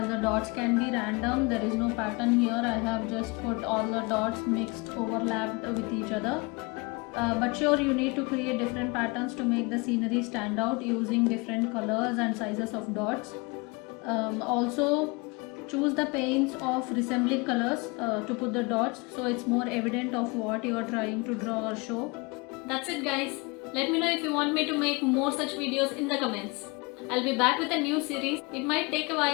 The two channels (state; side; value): quieter; right; 27.8 dB